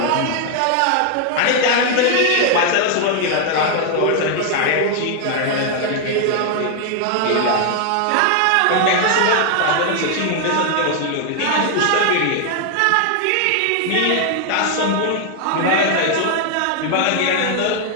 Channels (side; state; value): both; different; correlation 0.00